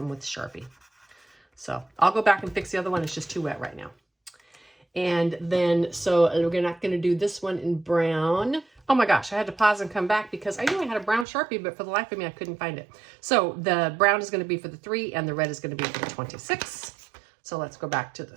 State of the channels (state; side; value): drops out; left; at 11.2 s